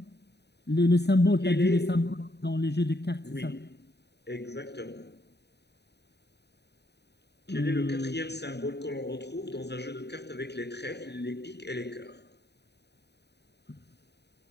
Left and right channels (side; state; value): right; late; 0.49 ms